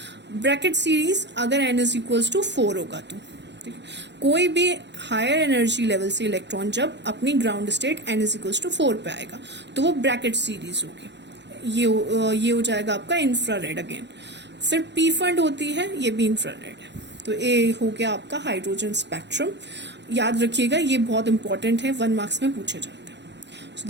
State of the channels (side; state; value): left; late; 0.51 ms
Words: ब्रैकेट सीरीज अगर n इज इक्वल्स टू 4 होगा तो ठीक है। कोई भी हायर एनर्जी लेवल से इलेक्ट्रॉन जब अपनी ground state n is equals to 4 पे आएगा तो वो ब्रैकेट सीरीज होगी। ये हो जाएगा आपका इंफ्रारेड अगेन। फिर पी फंड होती है, ये भी इंफ्रारेड है। तो ये हो गया आपका हाइड्रोजन स्पेक्ट्रम। याद रखिएगा ये बहुत इंपॉर्टेंट है, 1 मार्क्स में पूछे जाते हैं। So